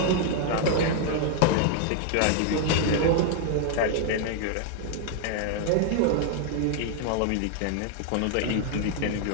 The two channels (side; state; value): both; different; correlation 0.00